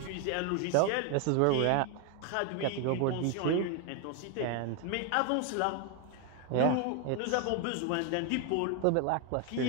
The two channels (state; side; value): different; both; correlation 0.01